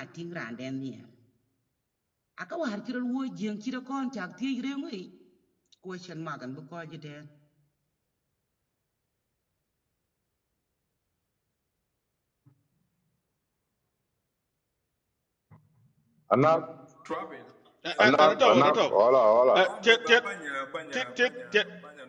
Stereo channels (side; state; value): both; identical; correlation 1.00